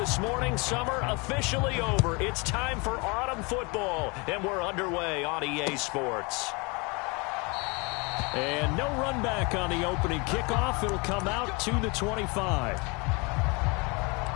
morning, summer officially over. It's time for autumn football, and we're underway on EA Sports. And no run back on the opening kickoff. It'll come out to the 25.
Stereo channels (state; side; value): quieter; right; 28.8 dB